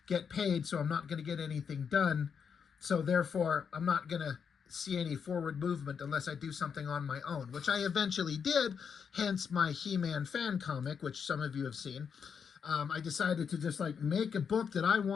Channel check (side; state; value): right; quieter; 6.7 dB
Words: get paid, so I'm not going to get anything done. So therefore, I'm not going to see any forward movement unless I do something on my own, which I eventually did, hence my He-Man fan comic, which some of you have seen. I decided to just make a book that I